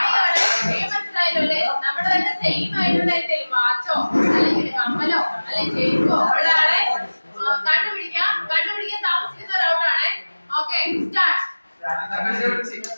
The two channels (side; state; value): both; inverted; correlation -1.00